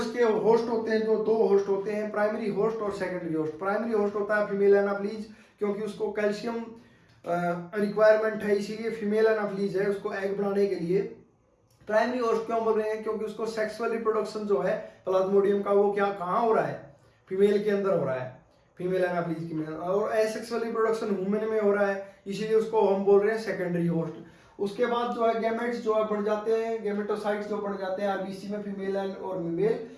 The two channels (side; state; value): both; identical; correlation 1.00